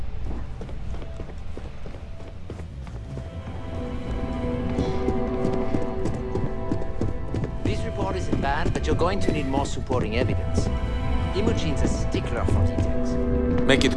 This report isn't bad, but you're going to need more supporting evidence. Imogene's a stickler for details. Make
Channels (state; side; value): identical; both; correlation 1.00